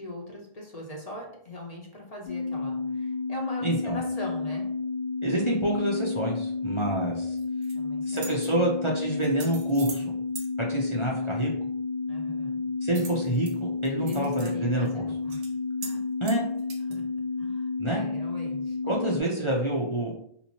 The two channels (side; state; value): right; late; 1.4 ms